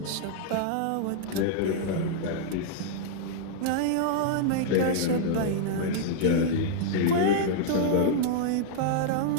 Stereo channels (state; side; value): different; both; correlation -0.01